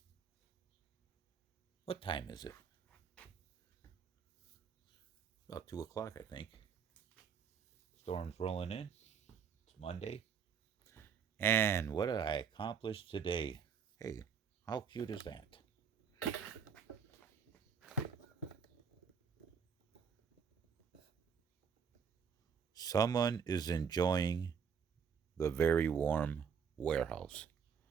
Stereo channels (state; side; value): quieter; left; 6.8 dB